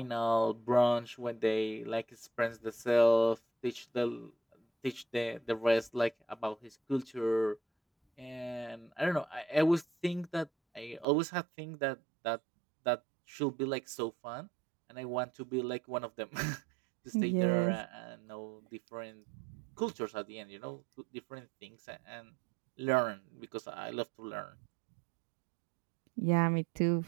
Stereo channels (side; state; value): left; drops out; at 11.1 s